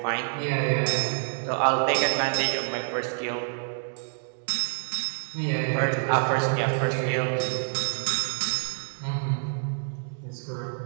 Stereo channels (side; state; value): left; silent; digital silence